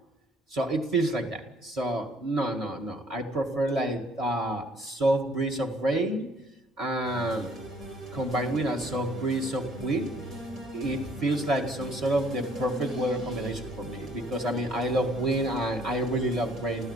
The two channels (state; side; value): normal; both; correlation 0.60